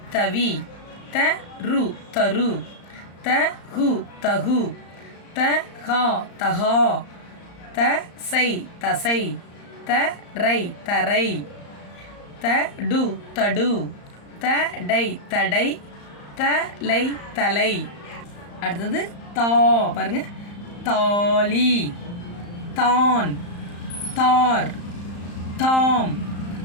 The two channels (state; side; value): late; right; 34 ms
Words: தவி, த ரு தரு, த ஹு தகு, த ஹா தஹா, த சை தசை, த ரை தரை, த டு தடு, த டை தடை, த லை தலை. அடுத்தது தா பாருங்க. தாலி, தான், தார், தாம்,